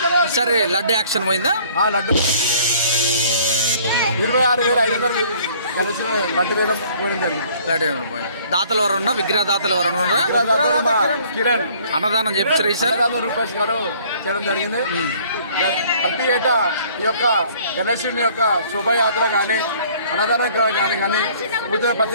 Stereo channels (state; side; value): inverted; both; correlation -0.56